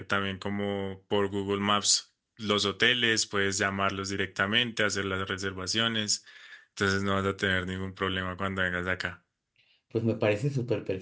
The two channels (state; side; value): identical; both; correlation 1.00